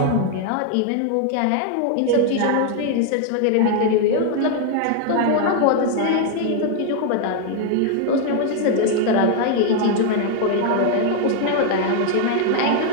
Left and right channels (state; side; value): different; both; correlation 0.00